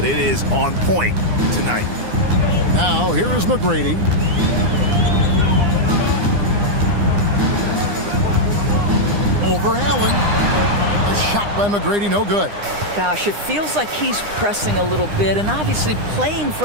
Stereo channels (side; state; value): left; late; 9.8 ms